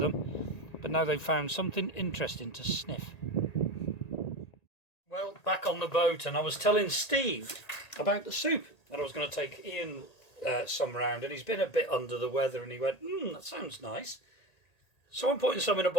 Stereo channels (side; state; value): right; late; 1.8 ms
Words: them, but now they've found something interesting to sniff. Well, back on the boat, and I was telling Steve about the soup, that I was going to take Ian some round, and he's been a bit under the weather, and he went, that sounds nice. So I'm putting some in a